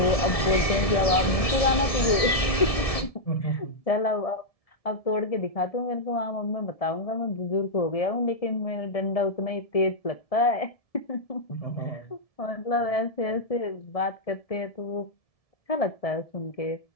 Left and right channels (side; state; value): right; late; 1.7 ms